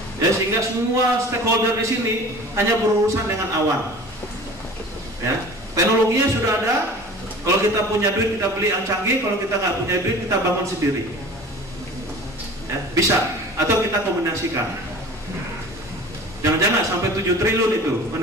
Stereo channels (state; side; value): normal; both; correlation 0.41